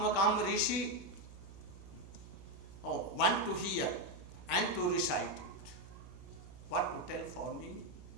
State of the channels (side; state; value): right; noise; hum, 16 dB below the sound